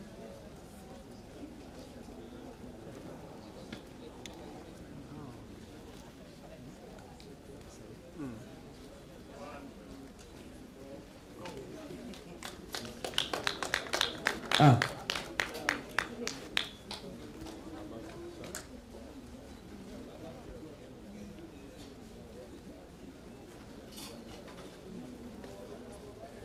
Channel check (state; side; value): identical; both; correlation 1.00